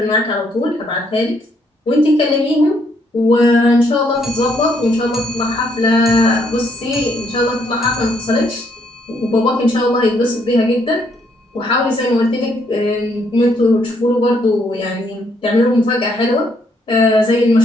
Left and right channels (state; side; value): normal; both; correlation 0.71